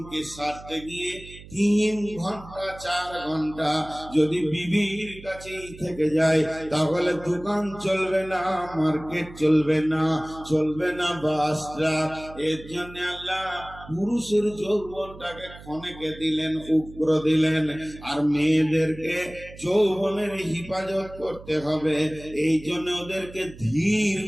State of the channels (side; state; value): right; noise; hum, 17 dB below the sound